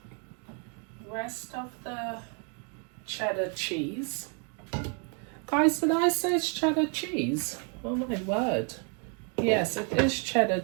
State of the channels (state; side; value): quieter; left; 39.7 dB